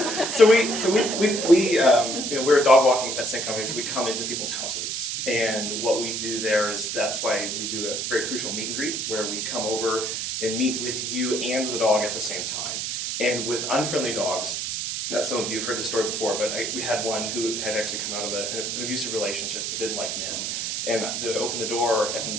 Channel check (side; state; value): right; noise; hiss, 2 dB below the sound